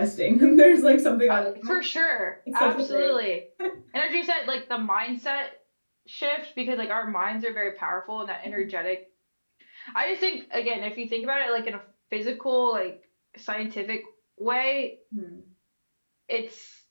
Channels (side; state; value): both; inverted; correlation -1.00